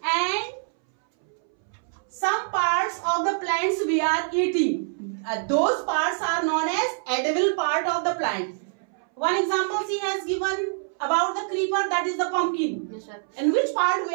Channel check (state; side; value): silent; left; 62 dB below the other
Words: And some parts of the plants we are eating. Those parts are known as edible part of the plant. One example she has given about the creeper, that is the pumpkin. Yes, sir. And which part we